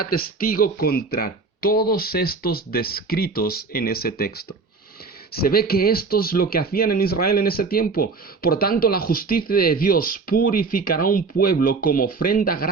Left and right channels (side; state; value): left; quieter; 4.3 dB